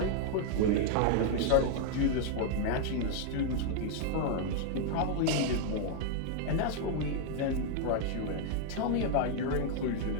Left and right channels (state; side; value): different; both; correlation 0.00